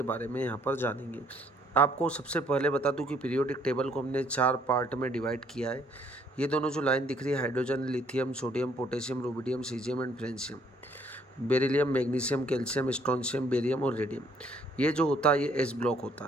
बारे में यहाँ पर जानेंगे। आपको सबसे पहले बता दूं कि पीरियोडिक टेबल को हमने 4 पार्ट में डिवाइड किया है। ये दोनों जो लाइन दिख रही है, hydrogen, lithium, sodium, potassium, rubidium, caesium and francium, beryllium, magnesium, calcium, strontium, barium और रेडियम, ये जो होता है ये एस ब्लॉक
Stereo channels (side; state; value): both; normal; correlation 0.65